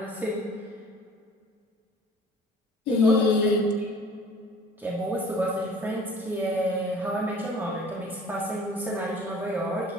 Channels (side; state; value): both; normal; correlation 0.49